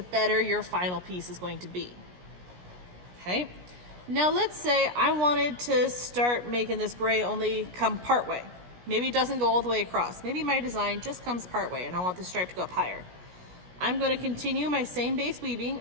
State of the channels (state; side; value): late; left; 17 ms